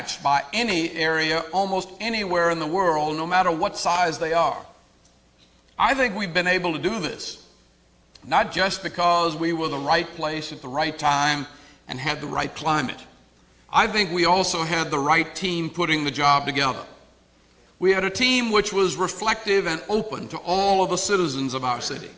by any area, almost anywhere in the world, no matter what size they are. I think we've been able to do this, not just because we were the right place at the right time and had the right climate. I think we also had the right team putting the job together. We had a team which was reflective and open to all of the citizens of our city.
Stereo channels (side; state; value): both; identical; correlation 1.00